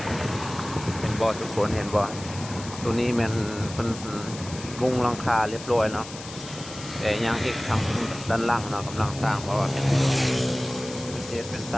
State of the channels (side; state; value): left; noise; hiss, 13 dB below the sound